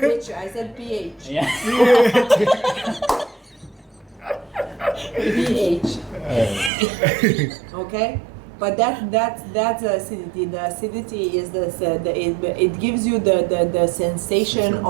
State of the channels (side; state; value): left; drops out; at 6.7 s